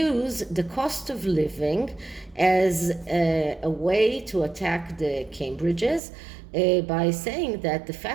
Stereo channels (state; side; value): drops out; left; at 6.0 s